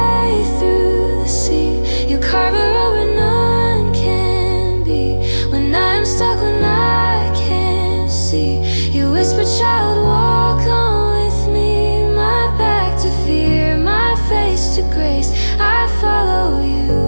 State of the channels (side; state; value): both; inverted; correlation -1.00